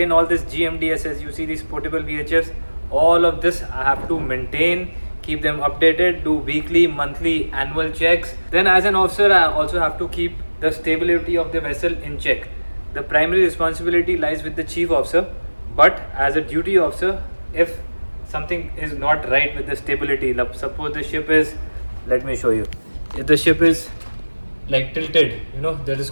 all this GMDSS. You see these portable VHFs, all of this I have to maintain, keep them updated, do weekly, monthly, annual checks. Then as an officer, I also have to keep the stability of the vessel in check. The primary responsibility lies with the chief officer, but as a duty officer, if something is not right with the stability, suppose the ship is, let me show you, if the ship is like tilted, you know, that is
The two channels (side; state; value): both; inverted; correlation -1.00